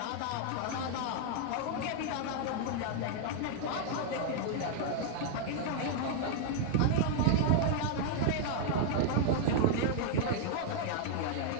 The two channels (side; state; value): both; different; correlation 0.00